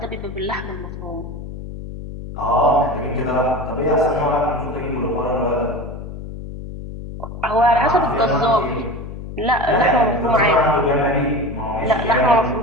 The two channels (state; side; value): noise; left; hum, 10 dB below the sound